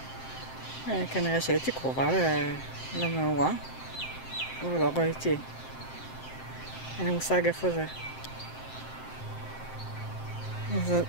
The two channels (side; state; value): right; late; 7.7 ms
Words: כנראה שהייתי קרובה למאורה, אבל לא ראיתי. אין לי מושג איפה זה.